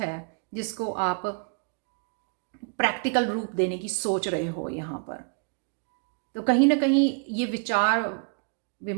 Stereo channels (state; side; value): quieter; left; 39.3 dB